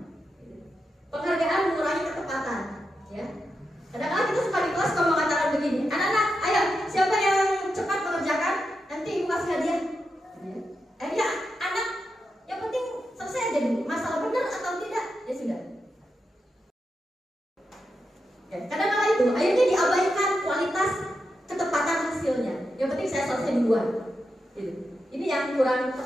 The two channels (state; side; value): normal; both; correlation 0.87